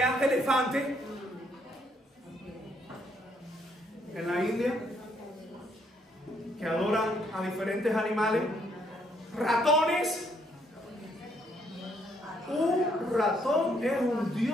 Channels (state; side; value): normal; both; correlation 0.70